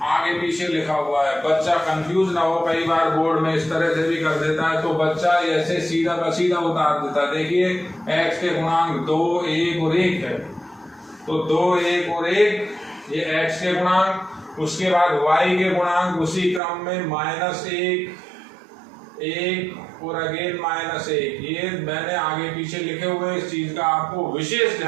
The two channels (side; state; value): left; drops out; at 16.6 s